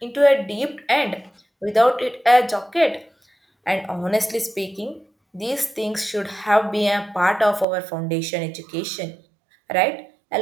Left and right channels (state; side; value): drops out; left; at 7.7 s